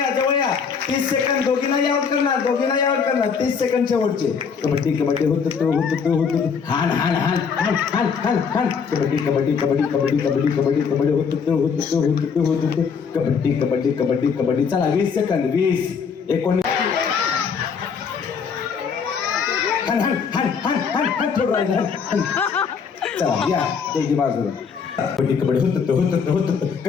जवळ या. 30 सेकंद. दोघींनाही आउट करणार, दोघींनाही आउट करणार. 30 सेकंड शेवटचे. कबड्डी कबड्डी हान हान हान हान हान हान हान. कबड्डी कबड्डी कबड्डी कबड्डी कबड्डी कबड्डी कबड्डी कबड्डी कबड्डी कबड्डी कबड्डी. चला 20 सेकंद. 20 19. चला या त्याची बाजूला. कबड्डी कबड्डी होत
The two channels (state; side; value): quieter; right; 6.2 dB